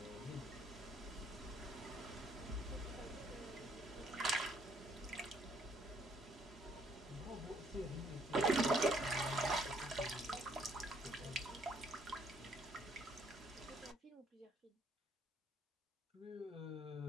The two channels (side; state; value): both; normal; correlation 0.66